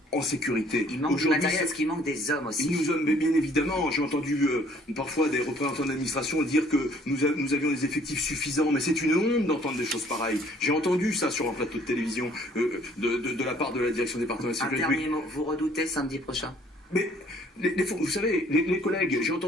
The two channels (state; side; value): normal; both; correlation 0.59